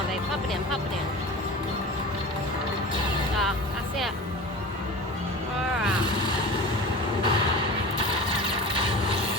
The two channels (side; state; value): both; normal; correlation 0.34